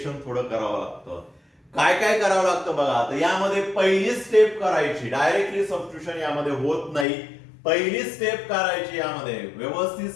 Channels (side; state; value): right; drops out; at 7.1 s